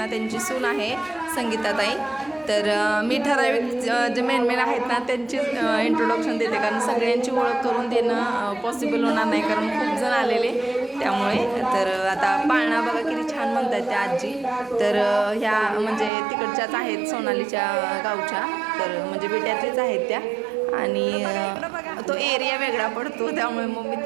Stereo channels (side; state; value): left; drops out; at 16.1 s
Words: त्यांची सून आहे संगीताताई. तर मी ठराविक जे मेन आहेत ना त्यांची इंट्रोडक्शन देते, कारण सगळ्यांची ओळख करून देणं पॉसिबल होणार नाही, कारण खूप जण आलेले त्यामुळे. तर आता पाळणा बघा किती छान म्हणतात त्या आजी. तर ह्या म्हणजे तिकडच्याच आहेत, सोनालीच्या गावच्या, तर म्हणजे बेट्यातलीच आहेत त्या. आणि तो एरिया वेगळा पडतो त्यामुळे मग मी